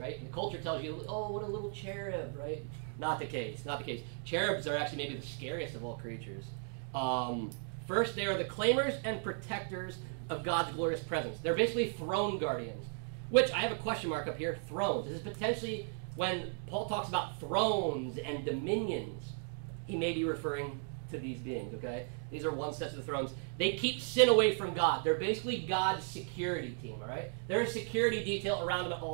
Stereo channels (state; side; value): silent; left; 54 dB below the other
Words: And the culture tells you, oh, what a little cherub, right? Not the case, not the case. Cherubs are actually maybe the scariest of all creatures. First, they are the claimers and protectors of God's glorious presence. They're basically throne guardians, which I have a question mark up here, thrones. This is potentially when Paul talks about thrones and dominions, he may be referring to these beings, okay? These are one set of the thrones. They keep sin away from God. They're basically God's security team, all right? They're a security detail around him at